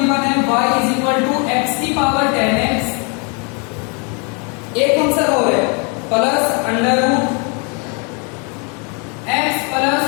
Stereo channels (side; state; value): right; quieter; 35.0 dB